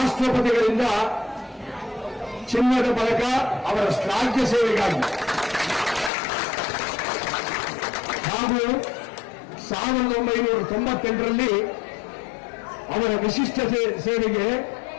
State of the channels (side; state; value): right; drops out; at 6.1 s